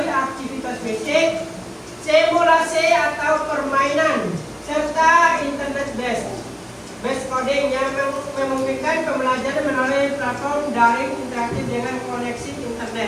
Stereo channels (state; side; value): identical; both; correlation 1.00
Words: aktivitas basic, simulasi atau permainan, serta internet based coding yang memungkinkan pembelajaran melalui platform daring interaktif dengan koneksi